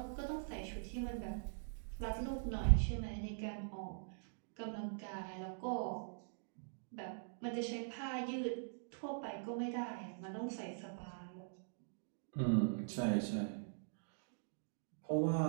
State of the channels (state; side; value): silent; left; digital silence